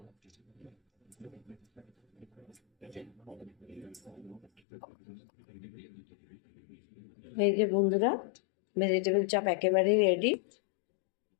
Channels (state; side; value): drops out; right; at 4.6 s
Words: এই যে বন্ধুরা, ভেজিটেবল চপ একেবারেই রেডি।